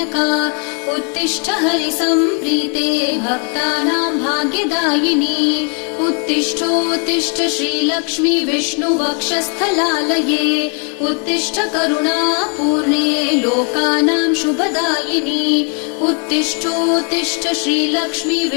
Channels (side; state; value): right; quieter; 39.7 dB